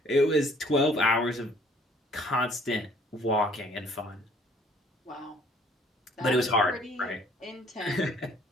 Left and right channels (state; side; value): normal; both; correlation 0.58